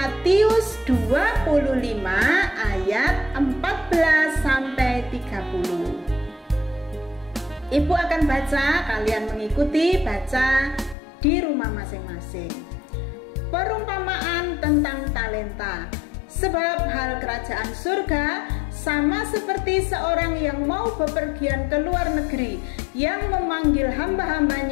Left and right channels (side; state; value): right; drops out; at 11.0 s